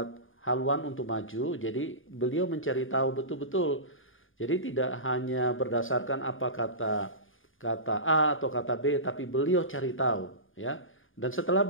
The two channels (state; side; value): late; right; 0.58 ms